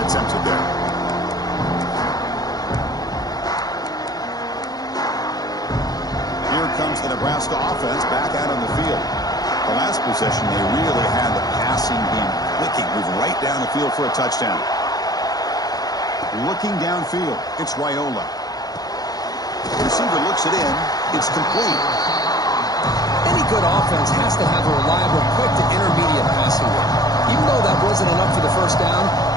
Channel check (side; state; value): right; late; 0.19 ms